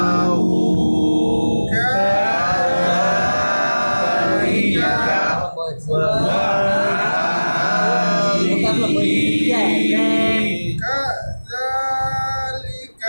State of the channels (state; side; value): inverted; both; correlation -1.00